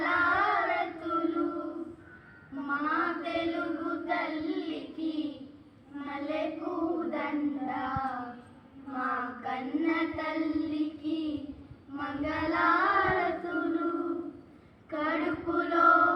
మా తెలుగు తల్లికి మల్లెపూదండ, మా కన్న తల్లికి మంగళారతులు. కడుపులో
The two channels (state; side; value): identical; both; correlation 1.00